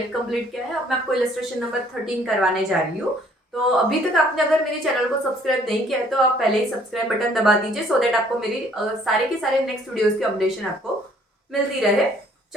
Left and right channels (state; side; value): normal; both; correlation 0.60